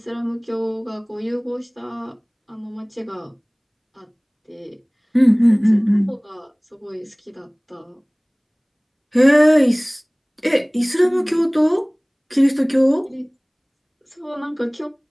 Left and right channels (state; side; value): identical; both; correlation 1.00